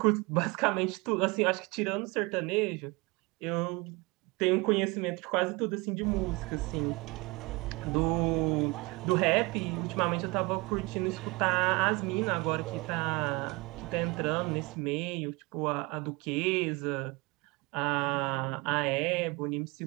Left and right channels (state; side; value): quieter; left; 25.4 dB